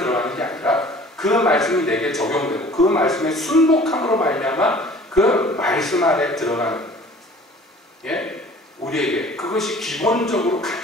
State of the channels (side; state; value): both; normal; correlation 0.48